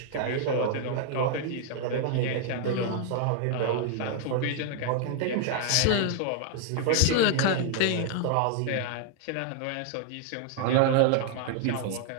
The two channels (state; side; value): different; both; correlation 0.00